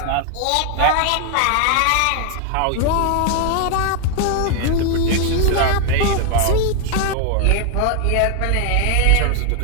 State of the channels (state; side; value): different; both; correlation 0.00